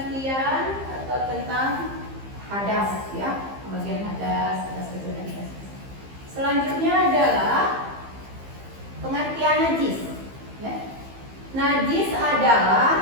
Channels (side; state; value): left; late; 15 ms